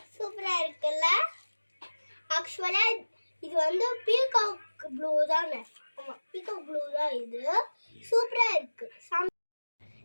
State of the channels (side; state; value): both; inverted; correlation -1.00